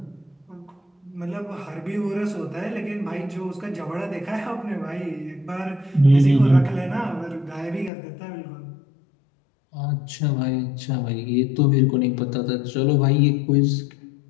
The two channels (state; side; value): drops out; right; at 7.9 s